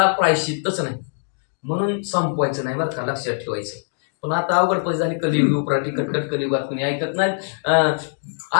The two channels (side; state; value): right; silent; digital silence